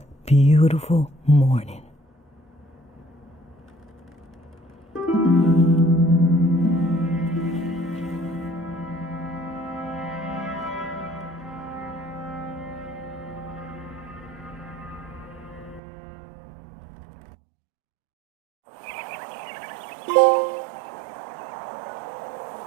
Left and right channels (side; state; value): left; drops out; at 15.8 s